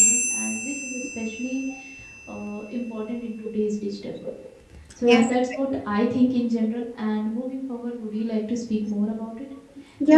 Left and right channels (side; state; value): both; identical; correlation 1.00